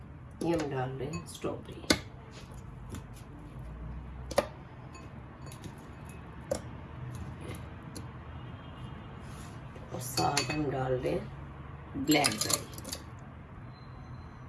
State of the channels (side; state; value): both; identical; correlation 1.00